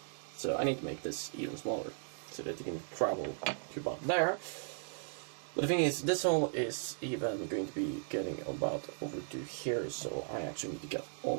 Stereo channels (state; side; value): silent; left; digital silence